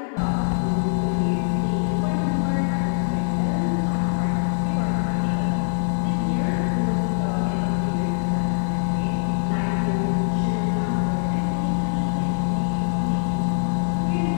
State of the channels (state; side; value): silent; right; digital silence